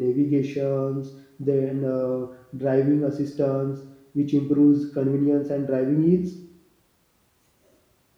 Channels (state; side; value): identical; both; correlation 1.00